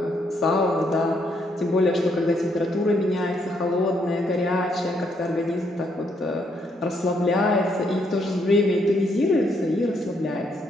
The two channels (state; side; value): normal; both; correlation 0.74